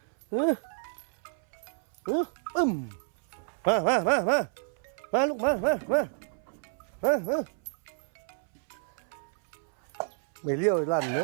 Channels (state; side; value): silent; left; 58 dB below the other